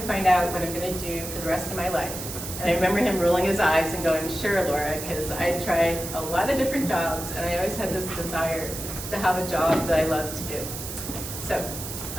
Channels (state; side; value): noise; right; hiss, 8 dB below the sound